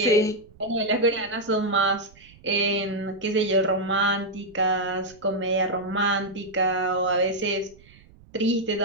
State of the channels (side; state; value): right; noise; rumble, 25 dB below the sound